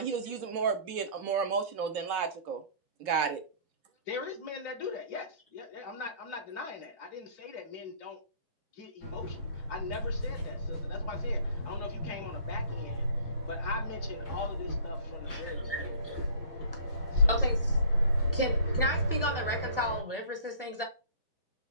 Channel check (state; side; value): inverted; both; correlation -0.51